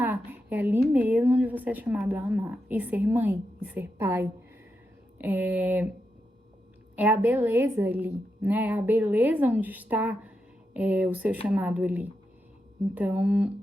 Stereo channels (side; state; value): both; normal; correlation 0.86